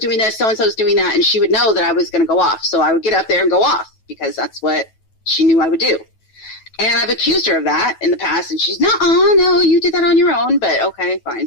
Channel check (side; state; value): right; late; 9.2 ms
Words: this, so-and-so's doing that, and she would know that I was going to go off. So I would get up there and go off, because that's what she knew I would do. And I've accused her of that in the past, and she's, no, you did that on your own, but okay, fine.